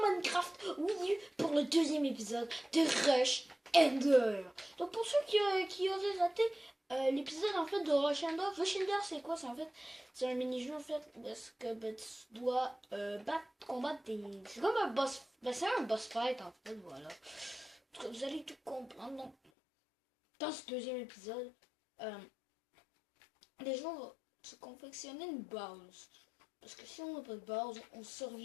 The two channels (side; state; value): right; drops out; at 19.4 s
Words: Minecraft Wii U pour le deuxième épisode de Rush Ender. Donc, pour ceux qui auraient raté l'épisode en fait de Rush Ender, c'est quoi? C'est un mini-jeu en fait, parce que tu dois combattre des. C'est comme un boss. C'est un boss fight en fait, voilà. En tout cas, vous allez tout comprendre. Donc, dans ce deuxième épisode, les gens vont se confectionner une base. Parce que si on n'a pas de base, on ne